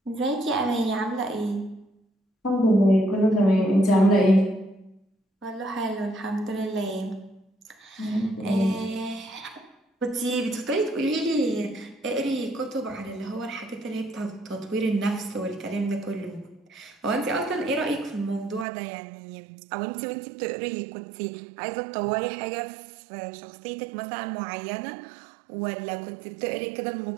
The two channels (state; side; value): drops out; left; at 18.7 s